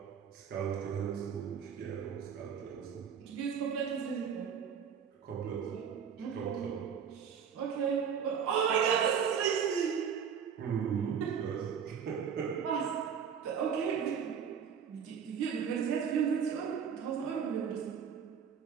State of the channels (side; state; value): left; quieter; 7.3 dB